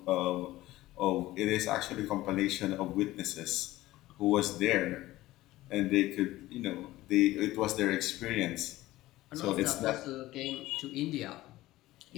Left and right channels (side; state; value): right; quieter; 16.9 dB